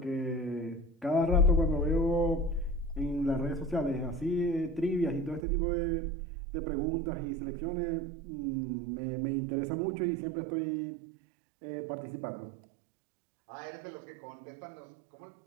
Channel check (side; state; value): left; drops out; at 5.4 s